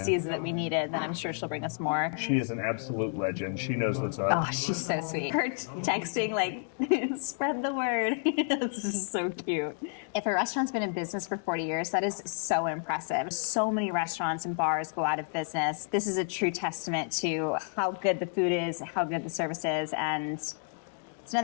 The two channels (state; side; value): silent; right; 58 dB below the other